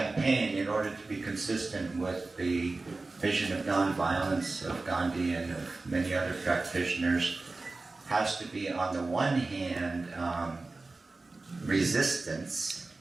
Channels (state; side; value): quieter; left; 3.5 dB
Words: in order to be consistent with the vision of nonviolence of Gandhi and of many other practitioners, has to be, on the one hand, resistance,